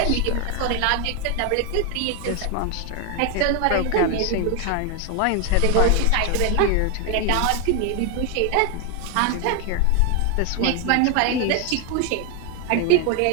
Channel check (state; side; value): different; both; correlation 0.01